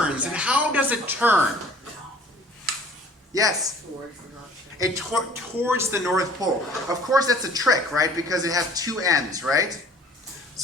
and how does it turn? Yes. Towards the north. Towards the North Pole. Of course, that's a trick, right? Because it has two ends, right?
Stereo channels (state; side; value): normal; both; correlation 0.52